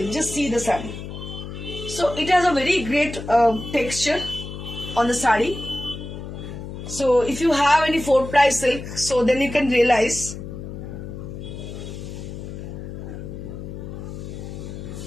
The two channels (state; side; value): noise; left; hum, 9 dB below the sound